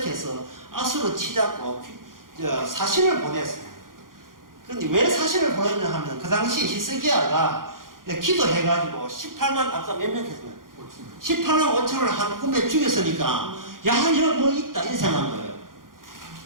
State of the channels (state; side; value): late; left; 0.90 ms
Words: 아수르 치자고 사신을 보냈어요. 그런데 왜 사신을 보냈냐 하면 그 당시 히스기야가 기도해가지고 18만, 아까 몇 명 했으면 18만 5천을 한 꿈에 죽였으니까 야, 여기 뭐 있다 이렇게 생각한 거예요.